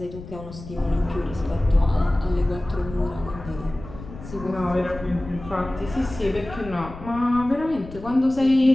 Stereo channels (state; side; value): noise; left; rumble, 14 dB below the sound